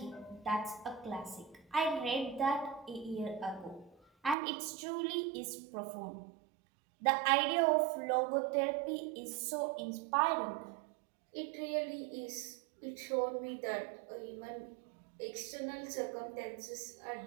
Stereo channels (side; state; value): left; drops out; at 4.4 s